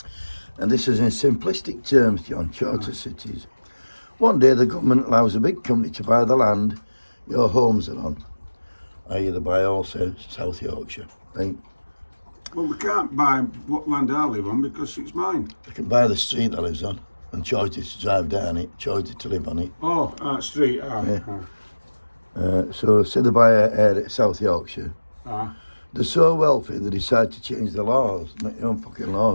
And this is in simplistic terms, John, charter cities. One day the government allows a big company to buy the land your homes are on. I.e. they buy also South Yorkshire. Right? Well, we can't buy what land I live on because it's mine. They can buy the street that lives on and charge it to drive down it, charge it to live on it. Oh, street. Yeah. So say they buy a South Yorkshire. They're so wealthy they decide to change the laws, make their own fucking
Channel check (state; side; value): inverted; both; correlation -1.00